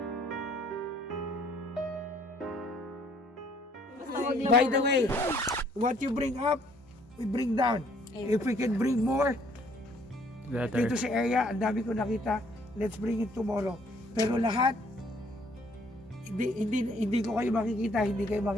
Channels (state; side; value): normal; both; correlation 0.62